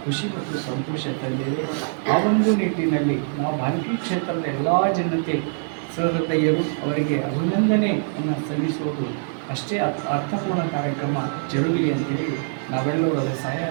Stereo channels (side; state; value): left; silent; 63 dB below the other